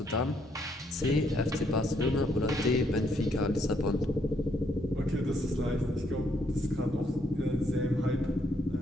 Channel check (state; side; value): normal; both; correlation 0.72